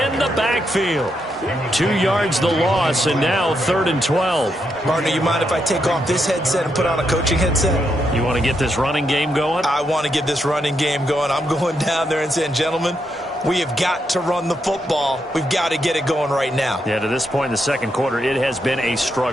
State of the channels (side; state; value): both; normal; correlation 0.81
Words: the backfield. 2 yards the loss, and now 3rd and 12. Partner, you mind if I take off this headset and put on a coaching headset? You want to get this running game going? I want to get this running game going. I'm going down there and saying, gentlemen, we have got to run the football. We've got to get it going right now. Yeah, to this point in the second quarter, it has been a